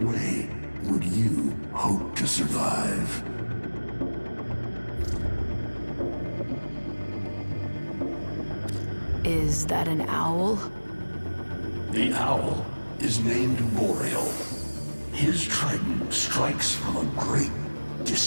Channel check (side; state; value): both; inverted; correlation -1.00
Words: would you hope to survive. Is that an owl? The owl is named Boreal. His trident strikes from a great